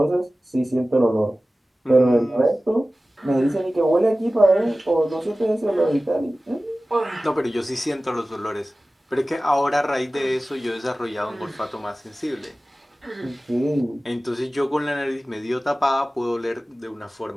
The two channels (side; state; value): both; normal; correlation 0.96